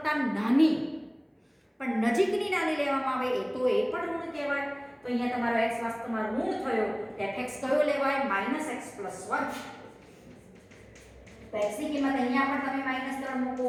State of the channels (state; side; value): identical; both; correlation 1.00